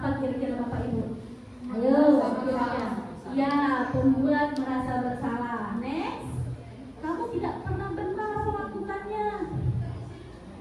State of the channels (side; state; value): both; identical; correlation 1.00